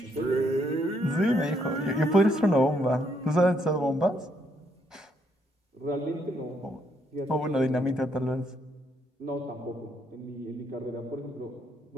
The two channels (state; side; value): normal; both; correlation 0.73